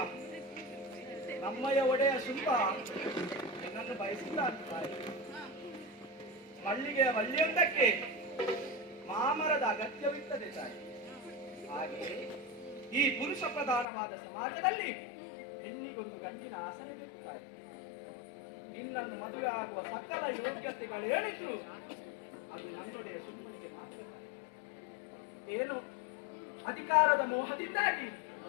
ನಮ್ಮಯ್ಯ ಒಡೆಯ ಶುಂಭ ನಿನ್ನನ್ನು ಬಯಸಿಲ್ಲ ತಾಯಿ. ಮಲ್ಲಿಗೆಯ ಬಳ್ಳಿಯೊಂದಕ್ಕೆ ಮಾಮರದ ಅಗತ್ಯವಿರ್ತದೆ ತಾಯಿ. ಹಾಗೆಯೇ ಈ ಪುರುಷ ಪ್ರಧಾನವಾದ ಸಮಾಜದಲ್ಲಿ ಹೆಣ್ಣಿಗೊಂದು ಗಂಡಿನ ಆಸನೆ ಬೇಕು ತಾಯಿ. ನಿನ್ನನ್ನು ಮದುವೆ ಆಗುವ ಸಕಲ ಯೋಗ್ಯತೆಗಳೇನಿದ್ರು ಅದು ನನ್ನೊಡೆಯ ಸುಮ್ಮನಿಗೆ ಮಾತ್ರ ತಾಯಿ. ಏನು ಅಧಿಕಾರದ ಮೋಹದಿಂದಾಗಿ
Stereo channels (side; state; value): right; drops out; at 13.9 s